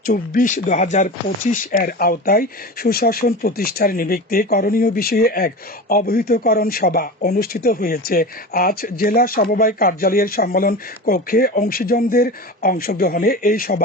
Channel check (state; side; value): normal; both; correlation 0.29